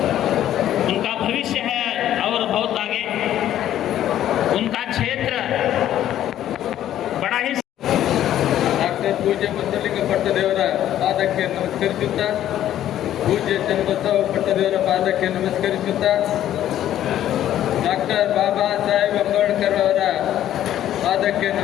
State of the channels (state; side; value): quieter; right; 11.9 dB